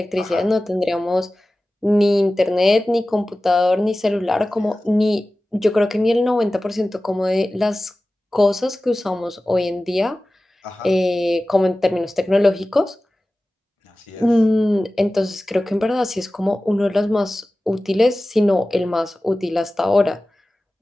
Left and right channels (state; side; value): normal; both; correlation 0.96